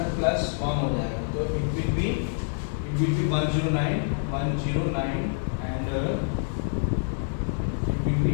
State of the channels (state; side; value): silent; right; digital silence